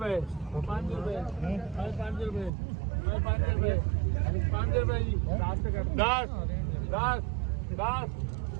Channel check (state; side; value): drops out; left; at 2.5 s